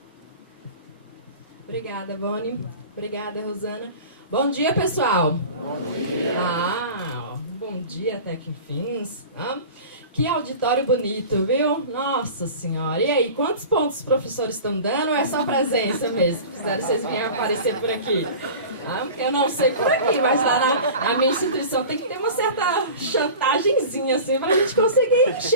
Obrigada, Vone. Obrigada, Rosana. Bom dia, pessoal. Bom dia. Bom dia até que enfim. Que auditório bonito, viu? Nossa Senhora. E aí, quantos pontos os professores estão dando ou é só presença mesmo? Fizeram vocês virem aparecer por aqui? Eu não sei por aqui, mas lá na minha instituição tem que ter uma certa chantagemzinha, assim, para a gente conseguir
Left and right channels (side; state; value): both; inverted; correlation -0.37